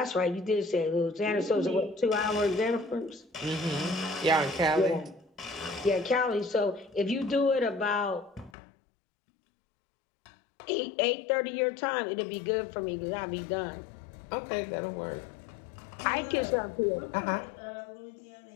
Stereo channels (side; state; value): right; drops out; at 8.5 s